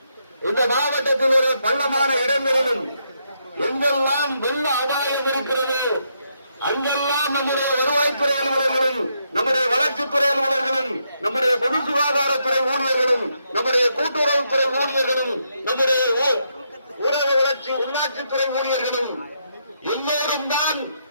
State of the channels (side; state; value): both; inverted; correlation -0.78